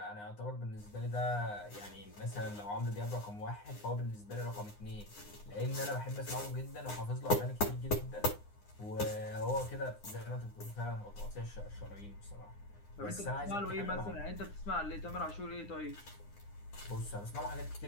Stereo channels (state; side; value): late; right; 9.8 ms